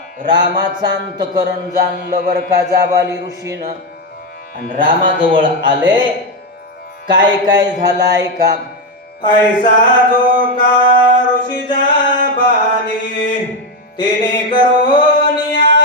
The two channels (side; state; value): both; normal; correlation 0.08